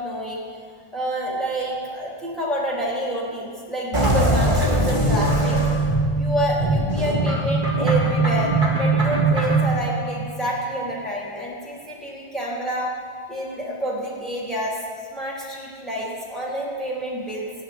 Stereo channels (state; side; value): late; right; 1.5 ms